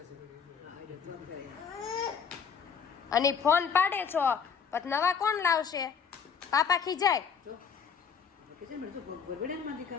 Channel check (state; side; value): quieter; right; 6.6 dB